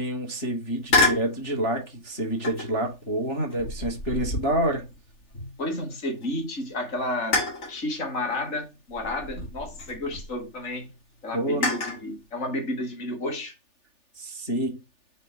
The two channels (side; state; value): right; late; 3.4 ms